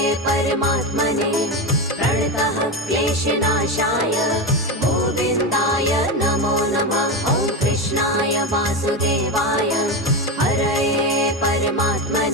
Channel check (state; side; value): normal; both; correlation 0.17